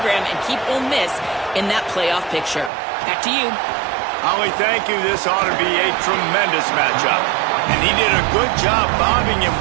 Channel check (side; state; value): left; drops out; at 2.7 s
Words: and keep Ole Miss in that playoff picture? Back to you. Holly, thank you. This ought to be a tremendous matchup. And he did a good job bobbing and